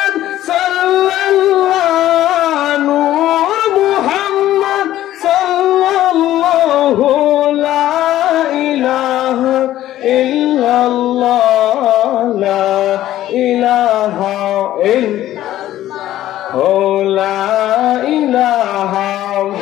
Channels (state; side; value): quieter; right; 13.6 dB